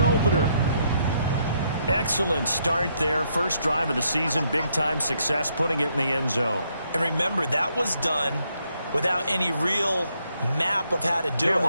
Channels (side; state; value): both; inverted; correlation -0.74